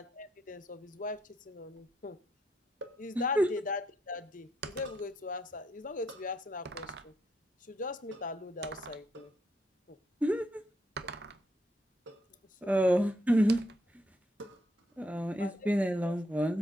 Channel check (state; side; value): normal; both; correlation 0.77